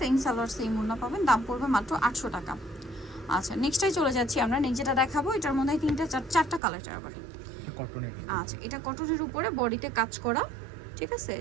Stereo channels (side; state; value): left; drops out; at 6.6 s